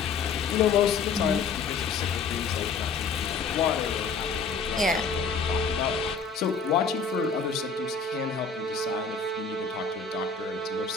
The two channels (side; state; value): right; quieter; 5.2 dB